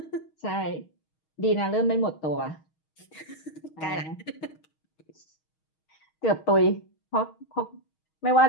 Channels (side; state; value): right; late; 6.4 ms